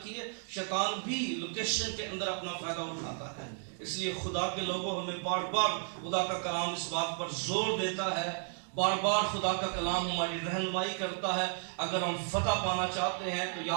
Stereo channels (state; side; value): silent; left; 55 dB below the other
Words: شیطان بھی لوکیشن کے اندر اپنا فائدہ اٹھاتا ہے. اس لیے خدا کے لوگوں ہمیں بار بار خدا کا کلام اس بات پر زور دیتا ہے, بار بار خدا کا کلام ہماری رہنمائی کرتا ہے. اگر ہم فتح پانا چاہتے ہیں تو